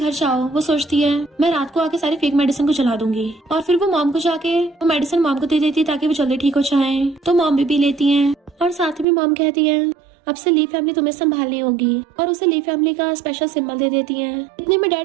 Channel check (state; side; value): drops out; left; at 9.1 s